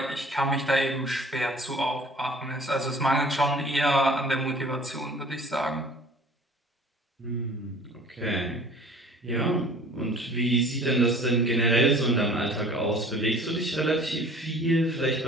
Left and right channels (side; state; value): both; normal; correlation 0.48